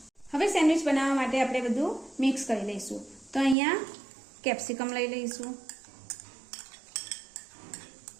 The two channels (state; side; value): drops out; left; at 3.6 s